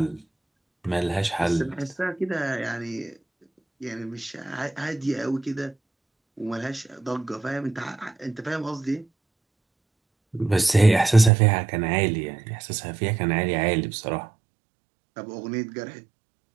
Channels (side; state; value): left; drops out; at 11.3 s